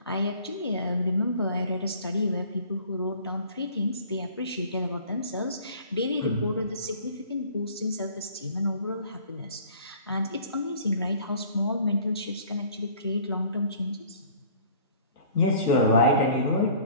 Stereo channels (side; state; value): both; inverted; correlation -0.51